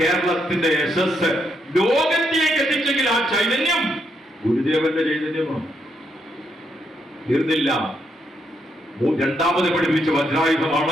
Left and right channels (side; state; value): both; normal; correlation 0.78